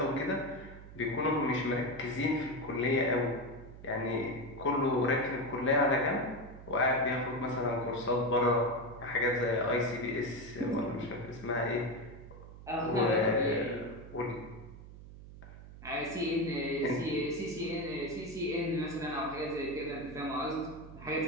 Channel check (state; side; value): noise; right; hum, 15 dB below the sound